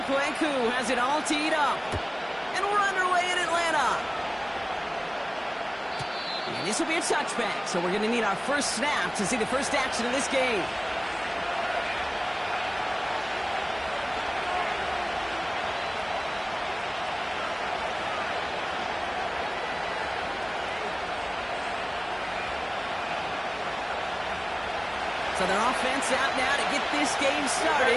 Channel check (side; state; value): both; identical; correlation 1.00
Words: Kweku has it all teed up. And we're underway in Atlanta. And this will be a touchback, so we're going to need our first snap to see the first action of this game. So their offense out now to get this game started.